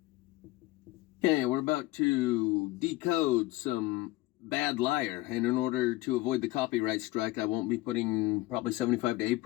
Okay, we're about to decode some Bad Liar, and in order to avoid the copyright strike, I won't be putting probably 75 to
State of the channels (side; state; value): right; quieter; 18.6 dB